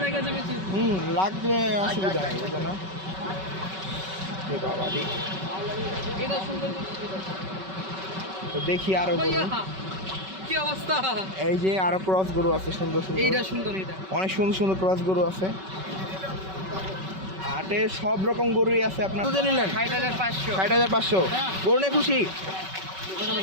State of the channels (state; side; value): late; left; 5.3 ms